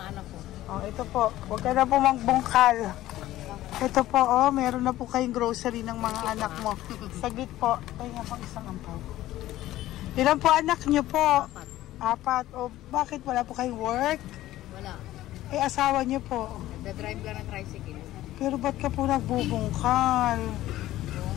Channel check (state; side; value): quieter; right; 15.0 dB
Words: anak ko. Ito po. Huwag ka na po magbungkal. Ito po, meron na po kayong grocery ng mga anak mo. Saglit po. Kaya po isang ampaw. Ilan po anak nyo po? 4. O bakit wala po kayong work? Wala. Asawa nyo po. Nagda-drive lang ng tricycle. Pero ba't ka po nagbubungkal? Oo